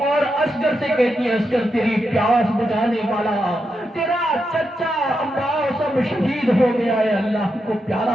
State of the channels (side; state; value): both; normal; correlation 0.85